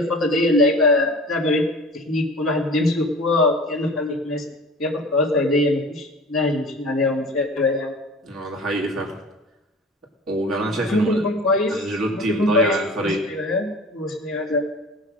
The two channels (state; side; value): normal; both; correlation 0.40